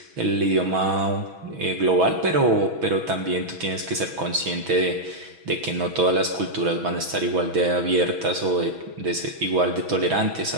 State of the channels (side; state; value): left; late; 6.1 ms